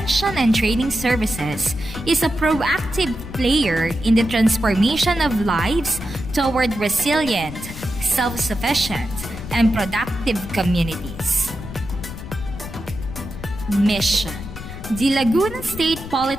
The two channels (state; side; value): noise; left; rumble, 11 dB below the sound